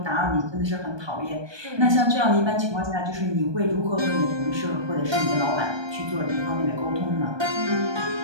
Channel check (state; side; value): late; left; 1.2 ms